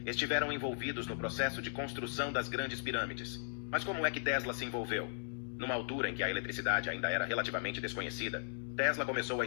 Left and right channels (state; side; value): silent; right; digital silence